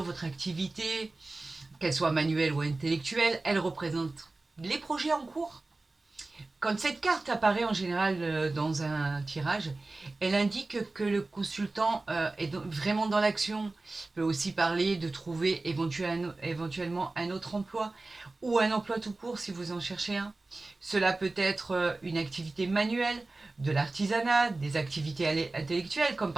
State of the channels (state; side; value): quieter; left; 3.2 dB